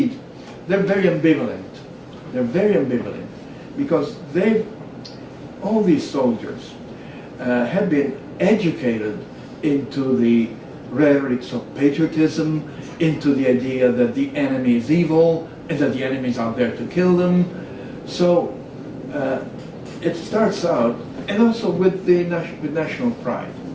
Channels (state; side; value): identical; both; correlation 1.00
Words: they're very ambivalent. They're very ambivalent because all these soldiers have been educated into the rhetorics of patriotism, into the idea that the enemy is evil and that the enemy is out there to kill them. So it starts out, and also with with national pride.